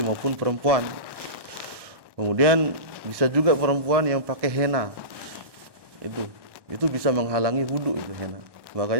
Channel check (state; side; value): late; left; 1.1 ms